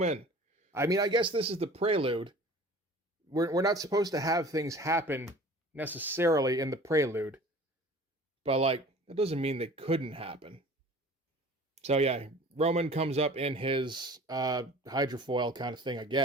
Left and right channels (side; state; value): both; normal; correlation 0.45